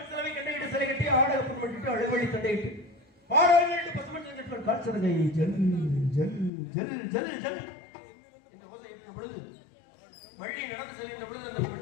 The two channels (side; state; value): right; drops out; at 6.5 s